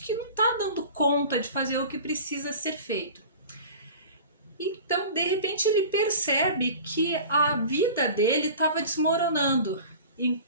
não está dando conta de fazer o que precisa ser feito. Então, de repente, ele percebe que a vida dele estava desmoronando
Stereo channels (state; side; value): inverted; both; correlation -0.39